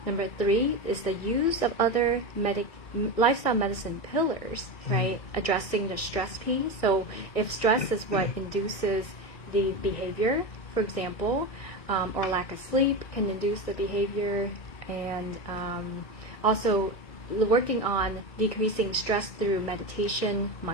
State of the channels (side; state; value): right; late; 1.6 ms